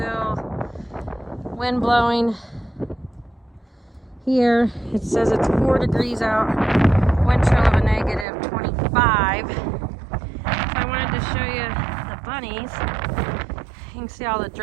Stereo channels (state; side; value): drops out; left; at 8.2 s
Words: wind blowing here. It says it's 4 degrees out, wind chill of a negative 25. So I wanted to show you the bunnies. You can see all the